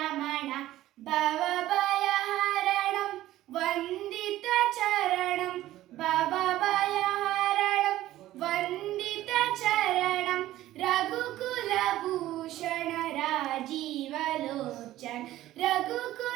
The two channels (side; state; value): left; quieter; 14.7 dB